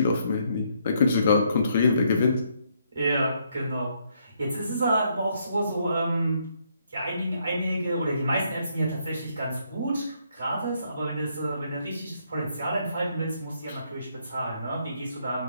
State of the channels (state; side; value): inverted; both; correlation -0.72